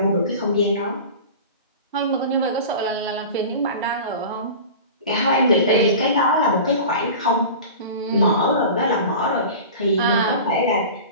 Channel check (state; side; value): inverted; both; correlation -0.35